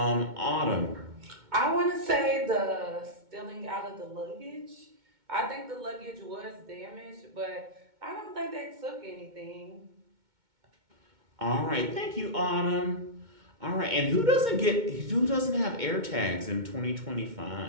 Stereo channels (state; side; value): late; left; 2.2 ms